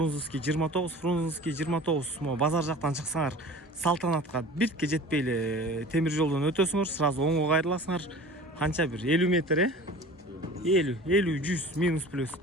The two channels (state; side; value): normal; both; correlation 0.41